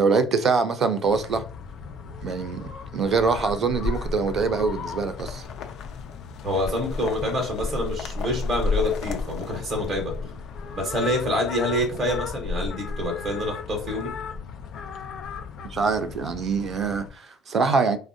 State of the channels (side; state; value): both; normal; correlation 0.54